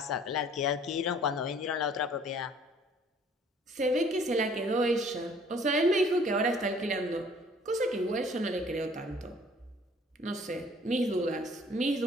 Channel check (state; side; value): normal; both; correlation 0.56